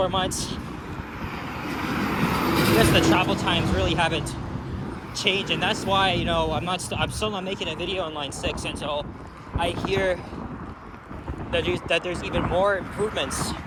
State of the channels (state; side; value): identical; both; correlation 1.00